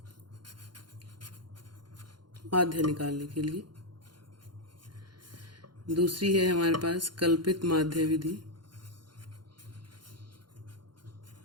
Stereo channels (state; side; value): late; left; 0.71 ms